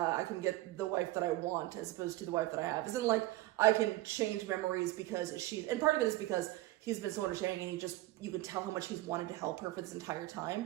get the wife that I want, as opposed to the wife that I have. Isn't like I can change memories because and part of it is because he's been so understanding, and you could tell how much he's wanted to help her for this entire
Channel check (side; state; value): left; quieter; 17.6 dB